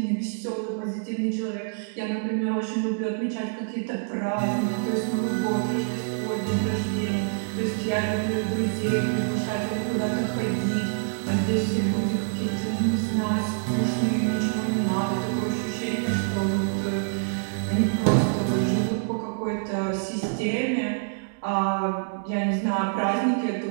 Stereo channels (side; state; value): left; silent; digital silence